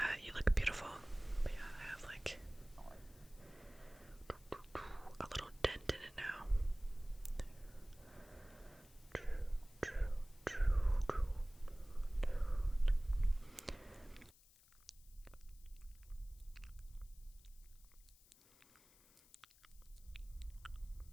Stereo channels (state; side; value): noise; left; hiss, 25 dB below the sound